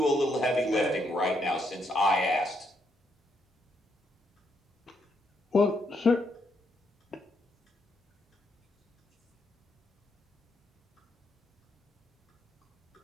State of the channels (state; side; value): normal; both; correlation 0.77